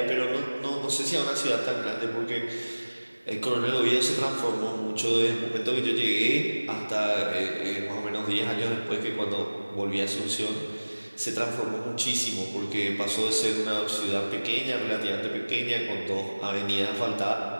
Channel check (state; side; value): inverted; both; correlation -1.00